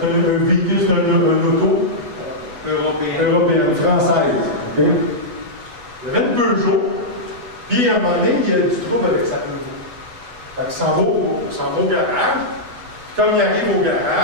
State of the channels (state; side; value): late; left; 8.1 ms